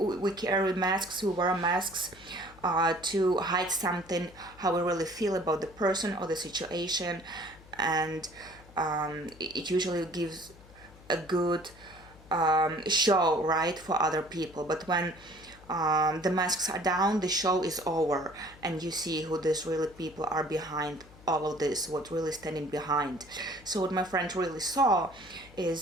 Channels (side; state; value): left; noise; hum, 22 dB below the sound